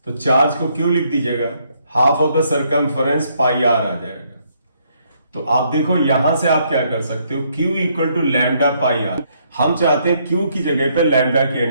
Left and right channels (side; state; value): both; inverted; correlation -0.71